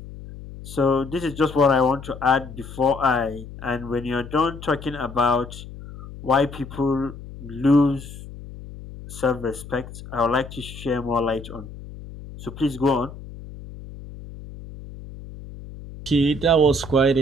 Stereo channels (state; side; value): noise; left; hum, 14 dB below the sound